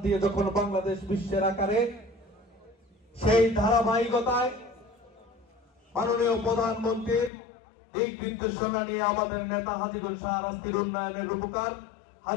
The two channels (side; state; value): right; drops out; at 7.3 s